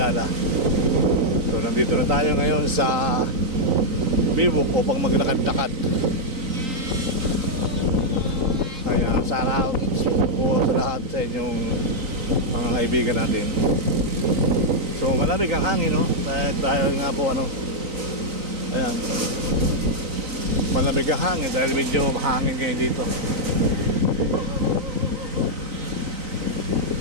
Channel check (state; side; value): late; left; 3.9 ms